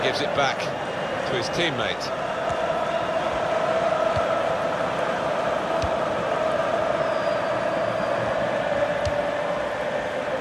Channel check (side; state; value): both; identical; correlation 1.00